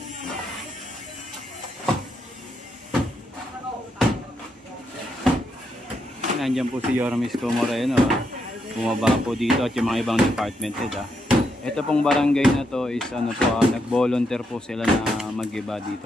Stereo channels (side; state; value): both; normal; correlation 0.80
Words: Nandiyan po si Yormisco Moreno. Bumaba po dito at yung mga ibang department head. Ito pong barangay na to is ano po, nag-volunteer po sila na mag-iba